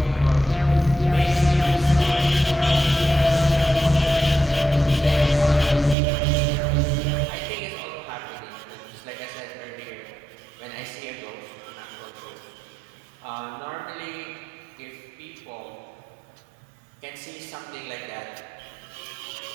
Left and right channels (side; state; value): left; drops out; at 6.0 s